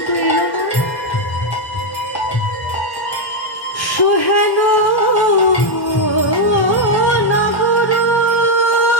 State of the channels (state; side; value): late; right; 1.1 ms